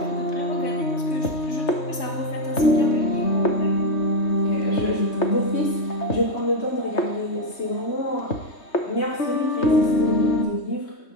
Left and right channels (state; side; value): late; right; 3.2 ms